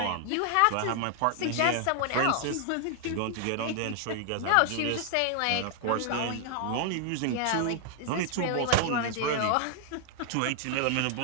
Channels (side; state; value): both; different; correlation 0.00